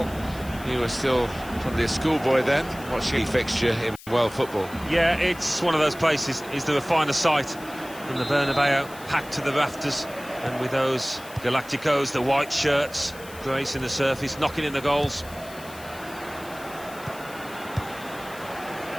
You were still probably a schoolboy then, watching a fixture in world football. Yeah, it's one of those places. Is there a finer sight than the Bernabeu, packed to the rafters, and with those Galacticos, the white shirts, gracing the surface, knocking in the goals.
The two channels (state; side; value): noise; left; hiss, 19 dB below the sound